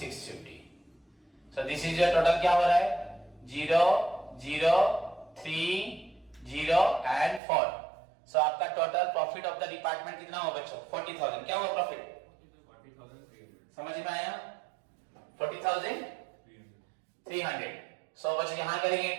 सो दिस इज योर टोटल, क्या हो रहा है 0 0 3 0 एंड 4। सो आपका total profit of the department कितना हुआ बच्चों 40,000। क्या हुआ प्रॉफिट, समझ में आया, 40,300। सो बच्चों यहां करेंगे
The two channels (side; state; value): left; drops out; at 7.4 s